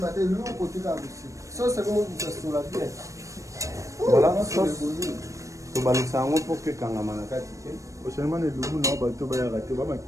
Voilà, sauce. Balosango pour que Kangama Nakati. Prochainement, les loups n'ont pas tout bien raté. On va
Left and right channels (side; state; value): left; late; 0.15 ms